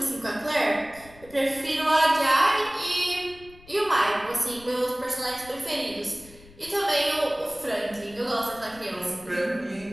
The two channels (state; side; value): noise; left; rumble, 23 dB below the sound